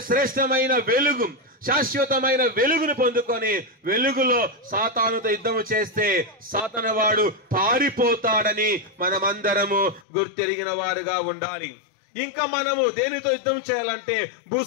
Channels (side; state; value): right; drops out; at 10.1 s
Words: శ్రేష్టమైన వెలుగు శాశ్వతమైన వెలుగును పొందుకొని వెలుగులో సాతానుతో యుద్ధము చేస్తే సాతాను వాడు పారిపోతాడని మనమందరము గుర్తెరిగిన వారుగా ఉండాలి. ఇంకా మనము దేనితో యుద్ధం చేయాలంటే భూ